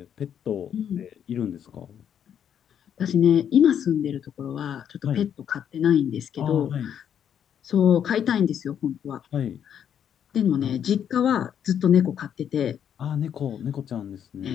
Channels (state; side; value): quieter; right; 8.9 dB